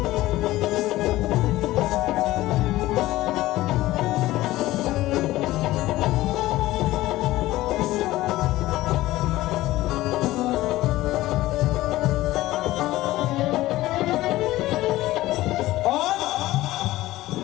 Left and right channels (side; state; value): right; quieter; 16.8 dB